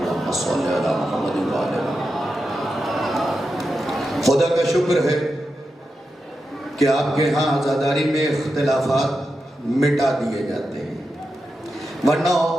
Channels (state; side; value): normal; both; correlation 0.89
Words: صلی علی محمد و آل محمد. خدا کا شکر ہے کہ آپ کے ہاں عزاداری میں اختلافات مٹا دیے جاتے ہیں، ورنہ